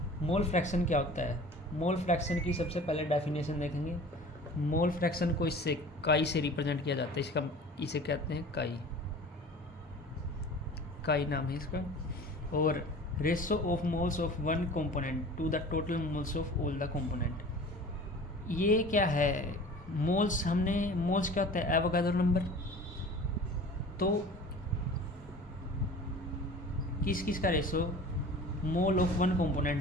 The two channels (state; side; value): normal; both; correlation 0.41